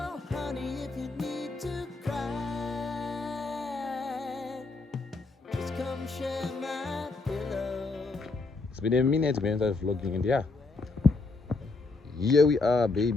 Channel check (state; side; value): quieter; right; 3.7 dB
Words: honey, if you need to cry, just come share my pillow. It's been a minute when I started vlogging, and yeah, here we are,